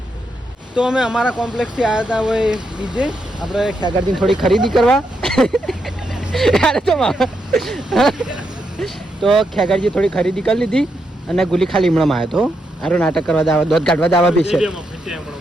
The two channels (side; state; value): both; normal; correlation 0.81